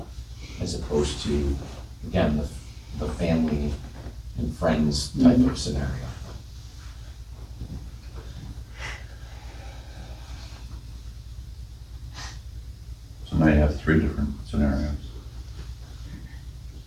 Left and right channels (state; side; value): identical; both; correlation 1.00